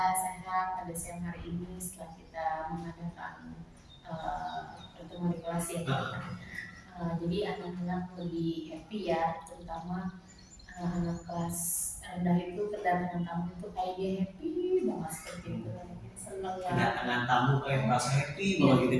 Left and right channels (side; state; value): both; identical; correlation 1.00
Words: sehat pada siang hari ini setelah kita mengadakan pertemuan di kelas ya. Jadi anak-anak lebih happy ya, terutama anak kelas rendah itu kedatangan tamu itu kayak dia happy banget seperti itu, senang ya. Kedatangan tamu kayak merasa happy banget